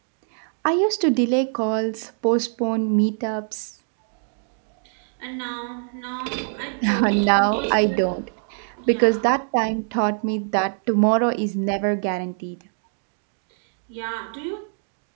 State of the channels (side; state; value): left; silent; 63 dB below the other